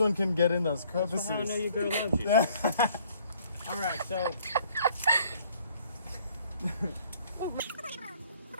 one can get in those crevices. That's how I know your girl loves you. Alright, so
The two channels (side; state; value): both; inverted; correlation -0.60